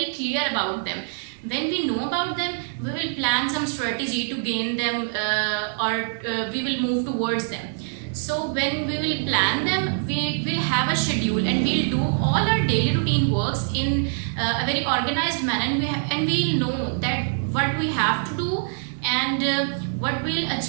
clear about them. When we know about them, we will plan some strategy to gain them, or we will move towards them. So when we will plan them, we will have a schedule, and we'll do all our daily routine works in a very organized manner, and we'll know that what we have to do, and what we'll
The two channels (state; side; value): silent; left; digital silence